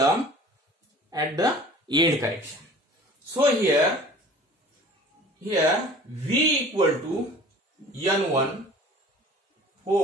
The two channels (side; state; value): both; normal; correlation 0.45